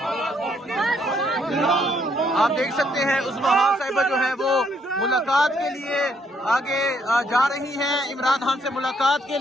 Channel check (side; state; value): both; normal; correlation 0.70